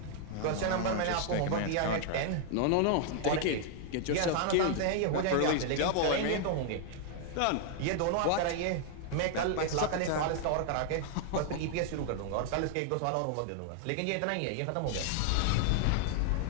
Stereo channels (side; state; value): both; different; correlation 0.00